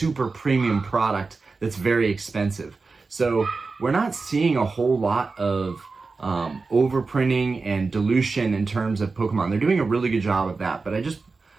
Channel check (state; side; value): quieter; left; 4.2 dB